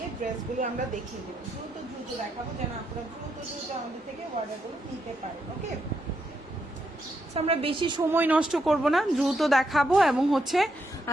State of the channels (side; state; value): both; normal; correlation 0.80